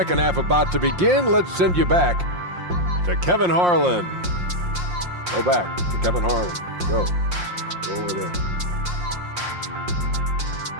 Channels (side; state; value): left; late; 5.6 ms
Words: half about to begin, let's send you back to Kevin Harlan. Go back to Kevin Harlan. Go over there.